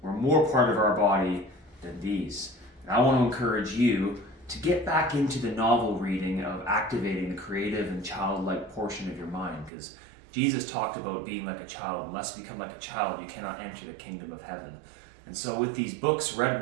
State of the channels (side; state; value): left; drops out; at 9.7 s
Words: were more part of our body than these. And I want to encourage you to get back into the novel reading of activating the creative and childlike portion of your mind, because Jesus talked about being like a child. Unless you become like a child, you cannot enter the kingdom of heaven. And so with these books,